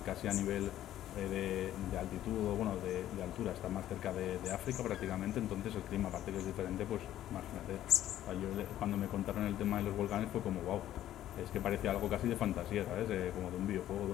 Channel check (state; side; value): quieter; right; 12.5 dB